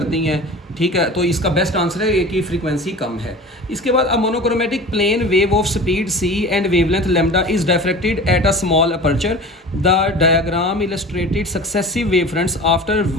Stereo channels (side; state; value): both; normal; correlation 0.37